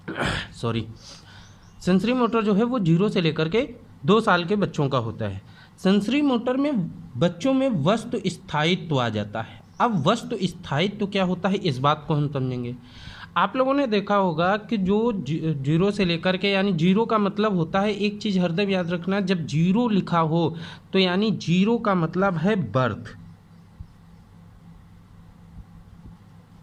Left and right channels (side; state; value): both; identical; correlation 1.00